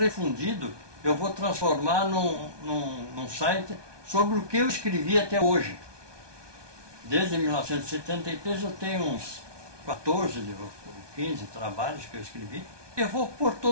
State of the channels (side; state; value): left; late; 1.2 ms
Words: Eu vou transformar num site sobre o que eu escrevi até hoje. Desde 1973 eu tenho uns 14 ou 15 trabalhos que eu escrevi. Eu vou pôr